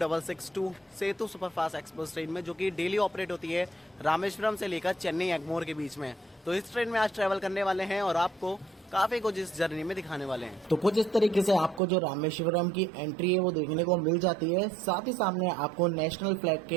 सेतु सुपरफास्ट एक्सप्रेस ट्रेन में, जो कि डेली ऑपरेट होती है रामेश्वरम से लेकर चेन्नई एगमोर के बीच में। तो इस ट्रेन में आज ट्रैवल करने वाले हैं और आपको काफी कुछ इस जर्नी में दिखाने वाले हैं। तो कुछ इस तरीके से आपको जो रामेश्वरम की एंट्री है वो देखने को मिल जाती है। साथ ही सामने आपको नेशनल फ्लैग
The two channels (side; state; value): left; drops out; at 11.8 s